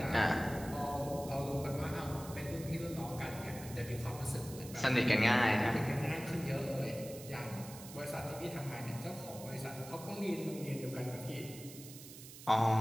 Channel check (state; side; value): noise; right; hiss, 15 dB below the sound